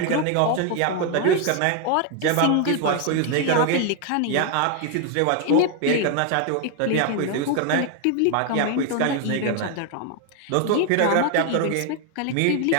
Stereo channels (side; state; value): both; different; correlation 0.01